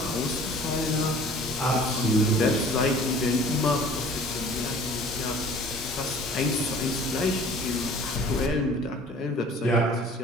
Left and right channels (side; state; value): both; normal; correlation 0.49